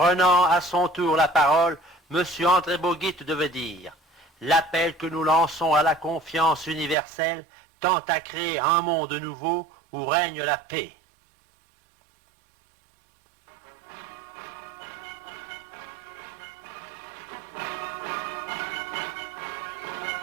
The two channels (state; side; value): drops out; left; at 7.0 s